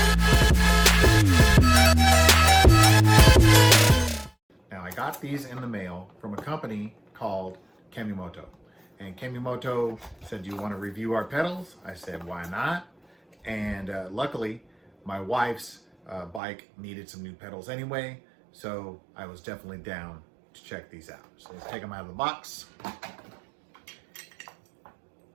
Now I got these in the mail from a company called Kemimoto. And Kemimoto said, "Do you want to review our pedals?" I said, "Why not?" And luckily my wife's bike needed some new pedals anyway, so I was definitely down to check these out. So let's take them out of the box.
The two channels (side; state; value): left; drops out; at 16.4 s